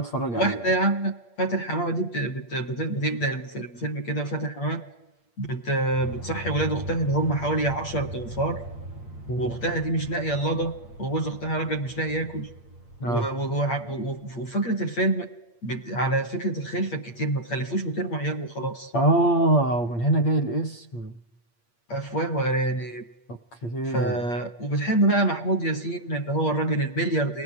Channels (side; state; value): right; late; 8.6 ms